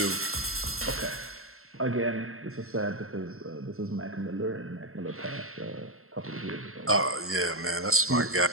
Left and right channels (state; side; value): late; left; 0.62 ms